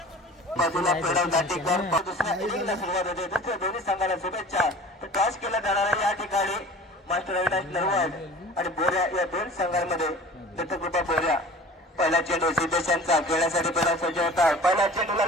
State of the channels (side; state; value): both; normal; correlation 0.43